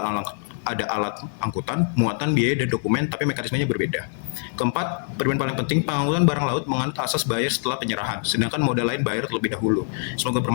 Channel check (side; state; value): right; silent; 63 dB below the other